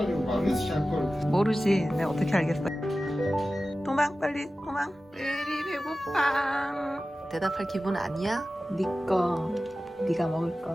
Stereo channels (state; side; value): normal; both; correlation 0.95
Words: 모르지. 내가 어떻게 알겠어. 도망 빨리 도망. 레디 배고파. 대답할 기분 아니야? 니꺼. 네가 먹을